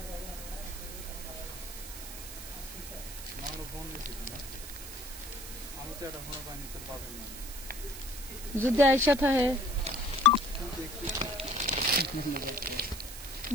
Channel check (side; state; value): right; noise; hiss, 11 dB below the sound